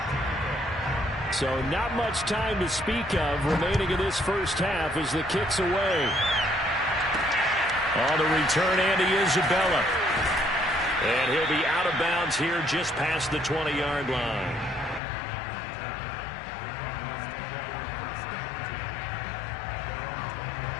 So not much time to speak of remaining in this first half as the kick's away. On the return, Andy Isabella. And he'll be out of bounds here just past the 20-yard line.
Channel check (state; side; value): drops out; right; at 15.0 s